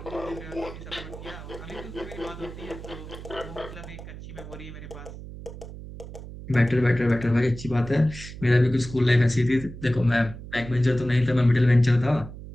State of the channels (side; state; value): right; noise; hum, 13 dB below the sound